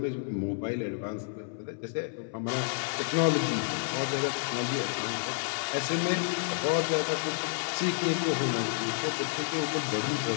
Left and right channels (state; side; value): silent; right; 58 dB below the other